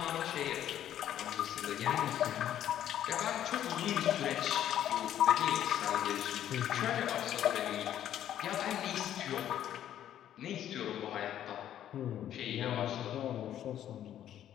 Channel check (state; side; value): quieter; right; 11.1 dB